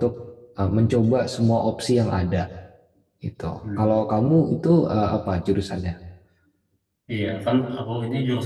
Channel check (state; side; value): identical; both; correlation 1.00